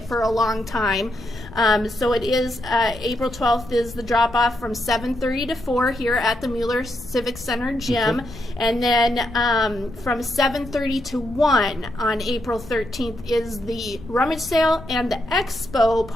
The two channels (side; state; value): left; noise; rumble, 16 dB below the sound